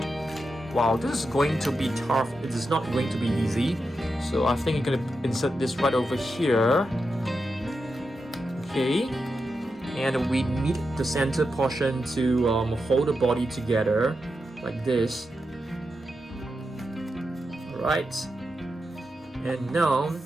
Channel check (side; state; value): both; normal; correlation 0.88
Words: Wow, this is going to be tough. It is not going to be easy. So I think you're going to insert this right over here. Okay. And we need the center portion to hold the body together. Like this. Alright. And now